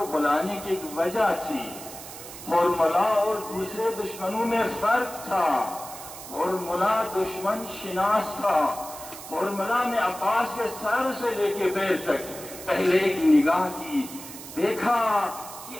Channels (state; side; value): noise; right; hiss, 13 dB below the sound